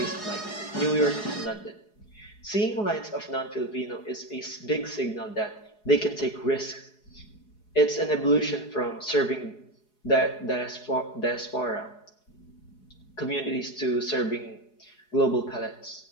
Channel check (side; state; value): right; late; 4.8 ms